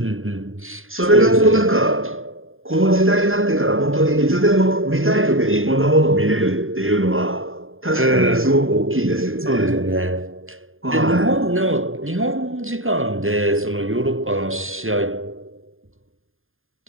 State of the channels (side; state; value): left; late; 0.60 ms